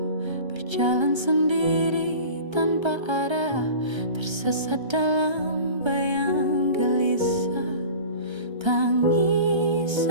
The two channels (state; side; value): late; left; 1.3 ms